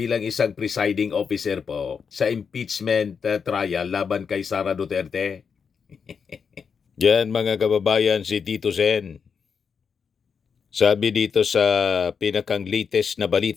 isang presiding officer po sa impeachment trial laban kay Sara Duterte. Yan mga kababayan, si Tito Sen. Sabi dito sa pinakang latest na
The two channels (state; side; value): quieter; right; 6.2 dB